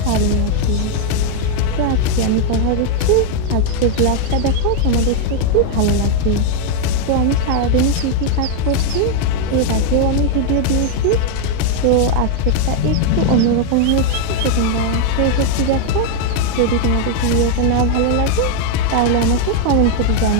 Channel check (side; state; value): both; different; correlation 0.00